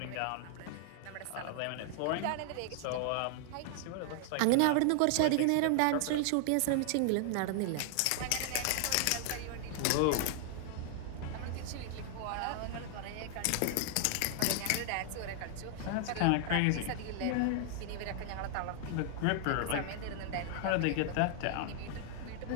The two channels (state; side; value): different; both; correlation 0.00